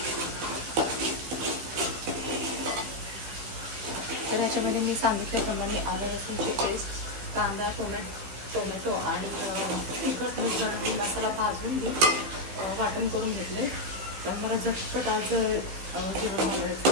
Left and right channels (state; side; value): late; left; 15 ms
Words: त्याच्यामध्ये मी सांगितल्याप्रमाणे आलं लसूणची पेस्ट, कांदा टोमॅटो आणि तिखट मीठ घालून मसाला भाजून घेऊन वाटण करून घेतले। तर मला झटपट आज जेवण